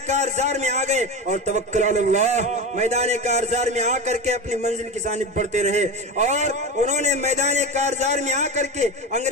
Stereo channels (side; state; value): both; normal; correlation 0.23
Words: کارزار میں آ گئے اور توکل علی اللہ میدان کارزار میں آ کر کے اپنی منزل کی جانب بڑھتے رہے، اور انہوں نے میدان کارزار میں آ کر کے